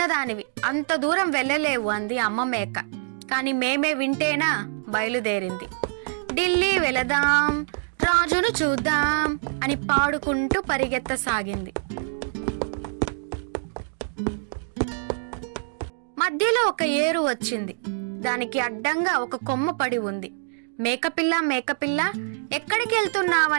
అంత దూరం వెళ్ళలేవు అంది అమ్మ మేక. కాని మేమే వింటేనా బయలుదేరింది. ఢిల్లీ వెళదాం, రాజును చూద్దాం అని పాడుకుంటూ పరిగెత్తసాగింది. మధ్యలో ఒక ఏరు వచ్చింది. దానికి అడ్డంగా ఒక కొమ్మ పడి ఉంది. మేకపిల్ల మేకపిల్ల, ఎక్కడికి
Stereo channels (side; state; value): left; silent; digital silence